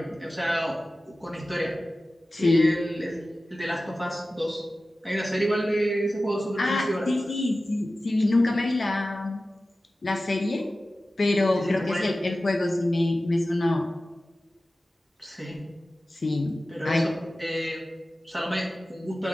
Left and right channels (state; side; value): normal; both; correlation 0.95